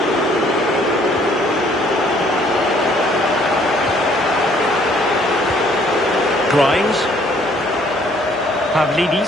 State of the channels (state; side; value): noise; left; hum, 28 dB below the sound